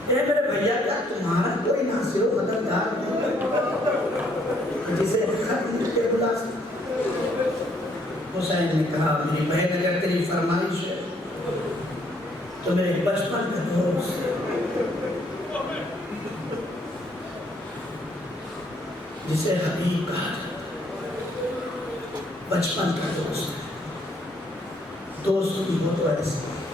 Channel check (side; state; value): both; normal; correlation 0.67